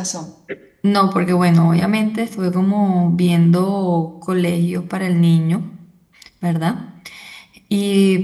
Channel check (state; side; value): identical; both; correlation 1.00